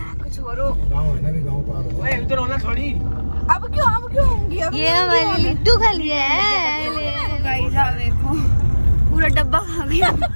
और हो। गाँव है ना, भी गाँव पार हो। ओए इधर होना थोड़ी। अब क्यों होंगी? ये हमारी लिट्टू खा लिया है। गाइस आप देखो, पूरा डब्बा खा गया।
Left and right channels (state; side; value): inverted; both; correlation -1.00